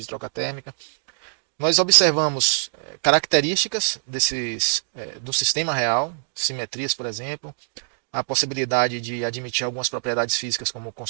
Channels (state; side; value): silent; left; digital silence